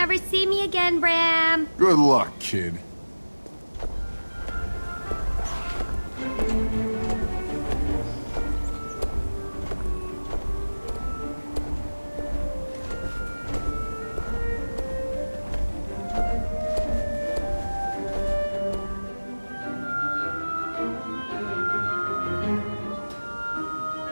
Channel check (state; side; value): inverted; both; correlation -1.00